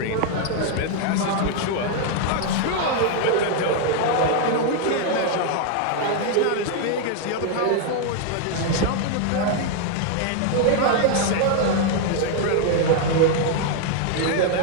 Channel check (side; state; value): both; different; correlation 0.00